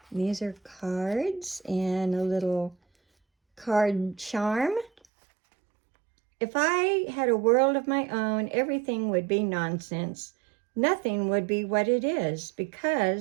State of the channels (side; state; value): left; drops out; at 4.9 s